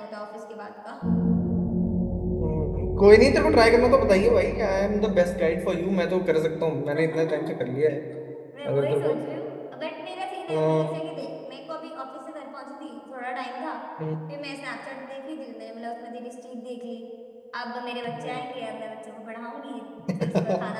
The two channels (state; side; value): identical; both; correlation 1.00